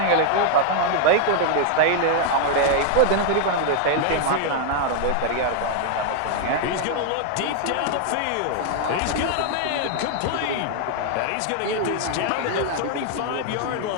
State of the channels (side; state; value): both; different; correlation 0.00